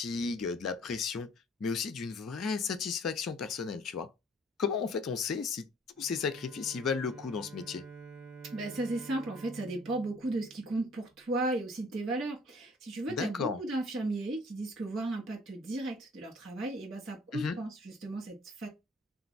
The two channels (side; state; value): both; normal; correlation 0.55